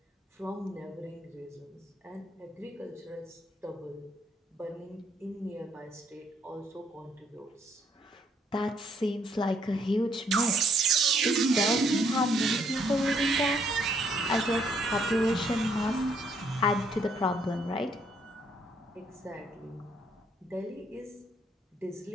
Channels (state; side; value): normal; both; correlation 0.69